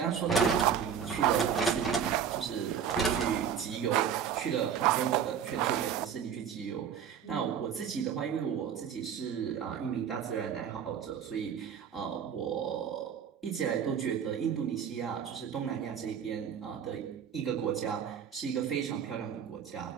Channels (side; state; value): left; quieter; 8.0 dB